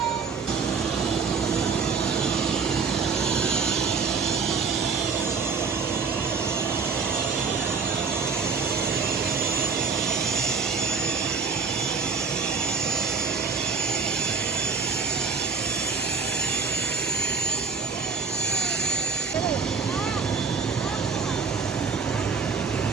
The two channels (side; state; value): left; quieter; 5.2 dB